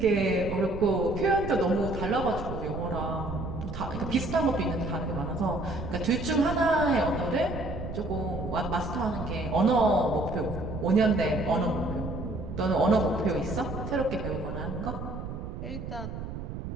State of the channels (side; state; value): right; noise; rumble, 7 dB below the sound